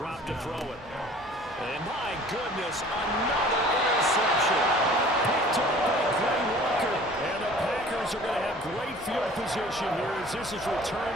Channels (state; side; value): normal; both; correlation 0.48